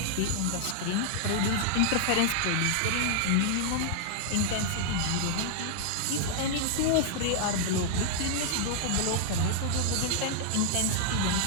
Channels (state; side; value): different; both; correlation -0.01